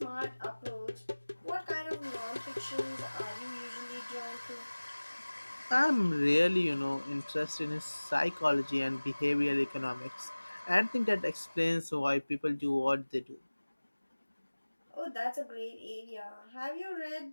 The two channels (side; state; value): both; inverted; correlation -1.00